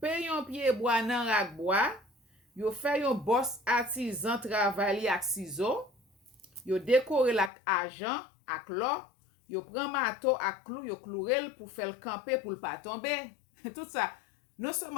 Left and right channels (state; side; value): drops out; right; at 7.5 s